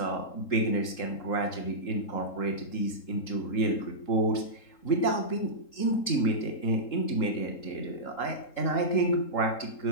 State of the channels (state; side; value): late; right; 3.8 ms